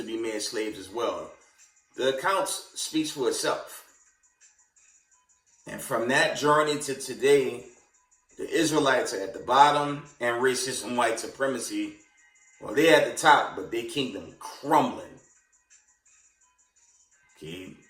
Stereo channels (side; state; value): both; identical; correlation 1.00